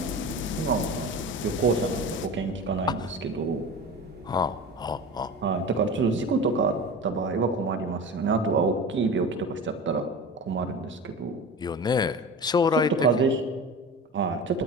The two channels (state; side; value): normal; both; correlation 0.32